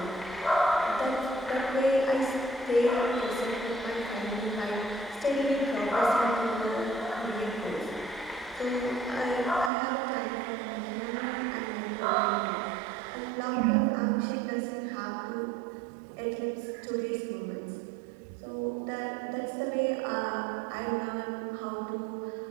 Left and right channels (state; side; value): drops out; left; at 9.7 s